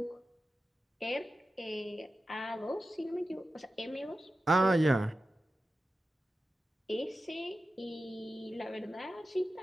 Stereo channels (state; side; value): normal; both; correlation 0.93